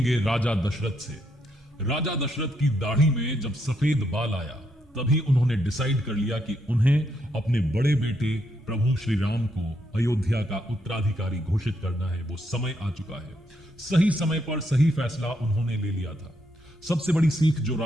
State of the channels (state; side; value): normal; both; correlation 0.77